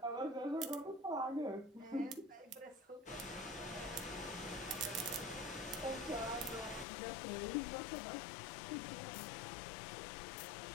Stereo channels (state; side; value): drops out; right; at 6.9 s